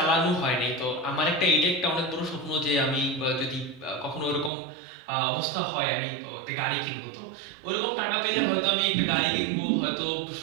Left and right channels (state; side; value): drops out; left; at 4.5 s